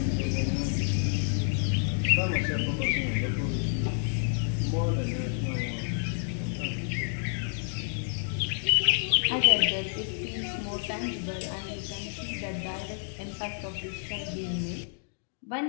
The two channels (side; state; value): right; silent; digital silence